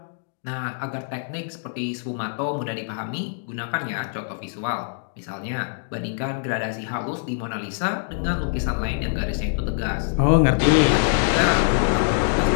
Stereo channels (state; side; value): silent; right; digital silence